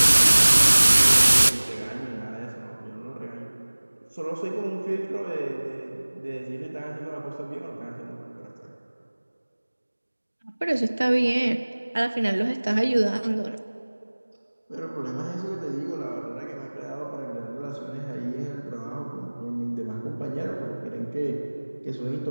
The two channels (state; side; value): inverted; both; correlation -1.00